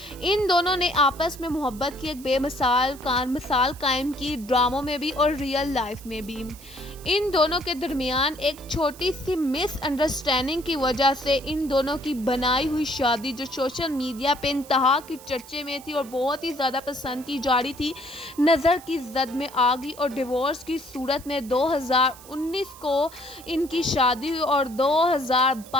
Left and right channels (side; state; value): right; noise; hiss, 20 dB below the sound